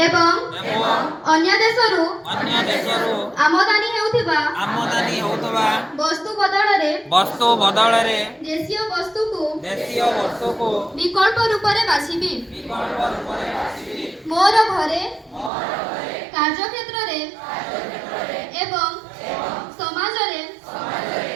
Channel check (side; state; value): left; drops out; at 15.5 s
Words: ଏବଂ ଅନ୍ୟ ଦେଶରୁ ଆମଦାନୀ ହେଉଥିବା ବସ୍ତୁ ବଦଳରେ ଦେଶୀୟ ବସ୍ତୁକୁ ବିକଳ୍ପ ରୂପରେ ବାଛିବି। ମୋର ଘରେ କାର୍ଯ୍ୟକ୍ଷେତ୍ରରେ ଏବଂ ସମାଜରେ